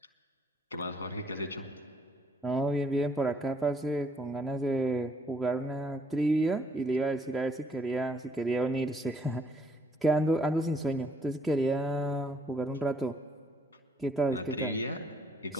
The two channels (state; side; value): normal; both; correlation 0.68